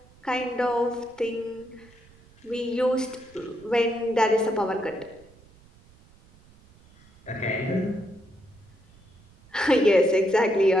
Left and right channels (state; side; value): noise; right; rumble, 27 dB below the sound